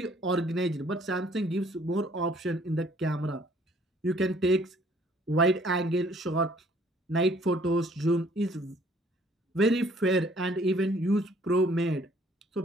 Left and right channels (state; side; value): normal; both; correlation 0.59